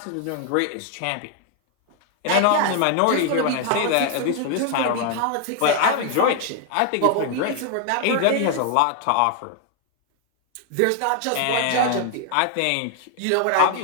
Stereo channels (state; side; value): different; both; correlation 0.00